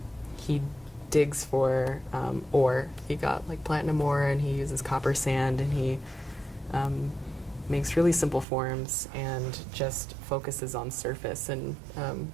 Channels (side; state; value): left; drops out; at 8.5 s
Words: digs for ore. He got like platinum ore, and he uses copper sand, and he makes really simple forms and just focuses on surface and